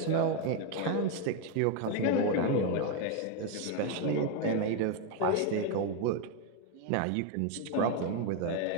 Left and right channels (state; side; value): different; both; correlation 0.02